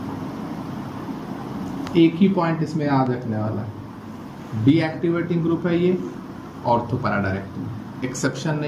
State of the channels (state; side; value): identical; both; correlation 1.00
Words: एक ही पॉइंट इसमें याद रखने वाला है, डीएक्टिवेटिंग ग्रुप है ये, ऑर्थो पैरा डायरेक्टिंग, एक्सेप्शन